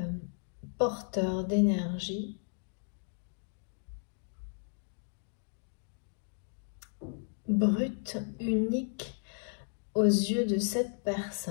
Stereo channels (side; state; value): right; silent; 55 dB below the other